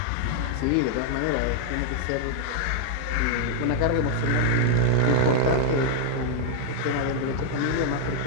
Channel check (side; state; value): both; different; correlation 0.00